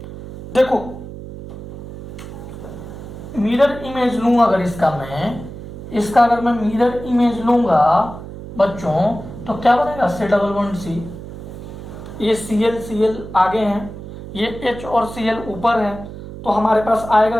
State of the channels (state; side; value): noise; right; hum, 12 dB below the sound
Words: देखो मिरर इमेज लूं अगर इसका, मैं इसका अगर मैं मिरर इमेज लूंगा बच्चों तो क्या बनेगा, C डबल बॉन्ड C, ये Cl Cl आगे हैं, ये H और Cl ऊपर है, तो हमारे पास आएगा